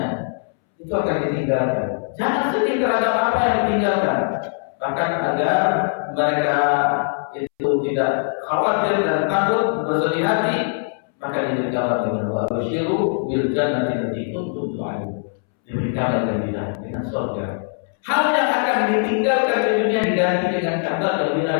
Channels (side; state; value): right; silent; 65 dB below the other